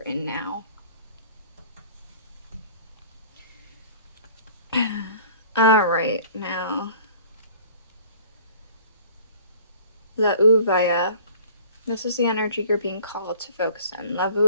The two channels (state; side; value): inverted; both; correlation -0.49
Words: in now. Alright, now. La Uvaya. This is the energy you're being called to focus on. La